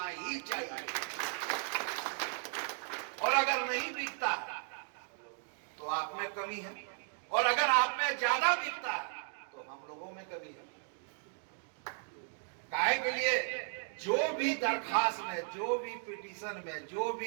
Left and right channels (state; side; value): silent; left; 54 dB below the other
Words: ही चाहिए, और अगर नहीं बिकता तो आप में कमी है, और अगर आप में ज्यादा बिकता है तो हम लोगों में कमी है। काहे के लिए जो भी दरखास्त में, जो भी पिटीशन में, जो